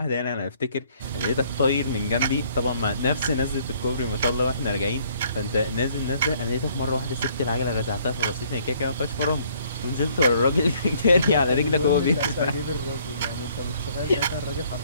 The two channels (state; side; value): inverted; both; correlation -0.63